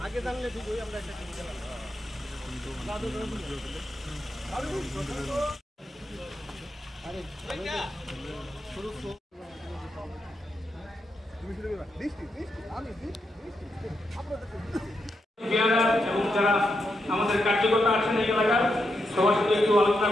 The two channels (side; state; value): both; normal; correlation 0.84